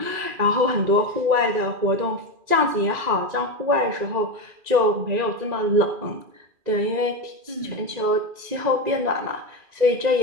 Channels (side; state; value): left; late; 2.4 ms